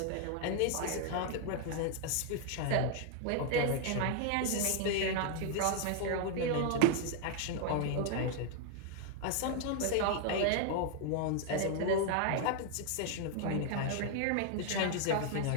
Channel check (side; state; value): both; different; correlation 0.00